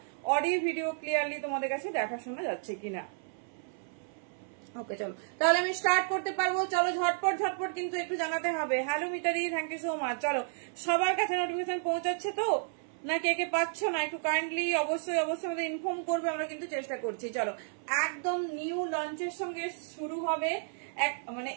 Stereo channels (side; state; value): left; silent; 56 dB below the other